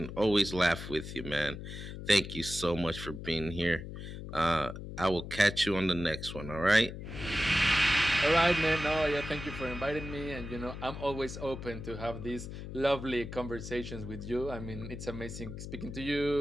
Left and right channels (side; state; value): left; noise; hum, 9 dB below the sound